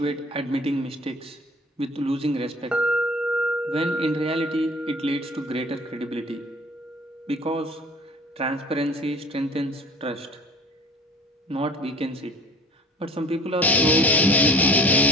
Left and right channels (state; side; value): normal; both; correlation 0.46